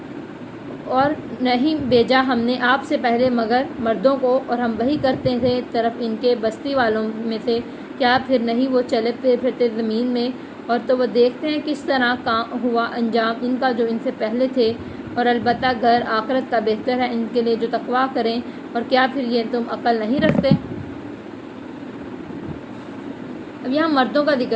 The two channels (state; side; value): identical; both; correlation 1.00